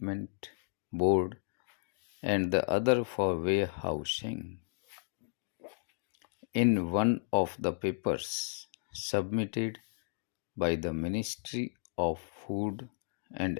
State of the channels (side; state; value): right; silent; digital silence